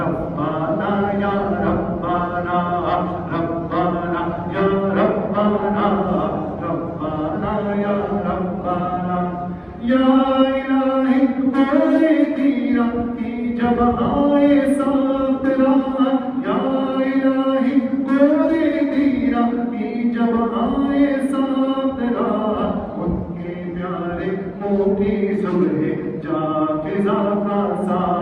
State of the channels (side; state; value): both; identical; correlation 1.00